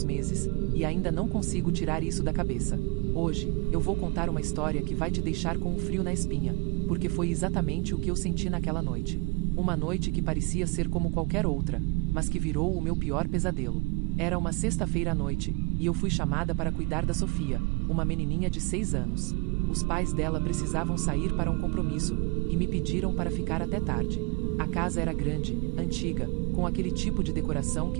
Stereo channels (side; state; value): left; quieter; 28.0 dB